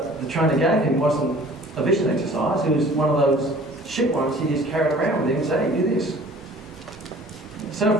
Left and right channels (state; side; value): normal; both; correlation 0.49